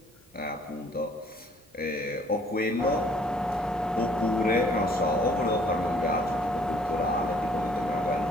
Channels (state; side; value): normal; both; correlation 0.60